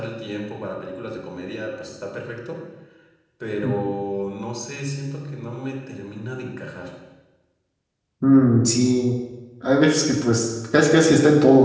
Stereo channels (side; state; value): both; identical; correlation 1.00